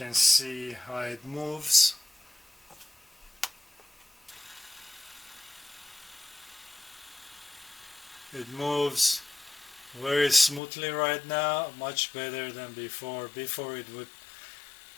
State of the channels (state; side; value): drops out; right; at 10.6 s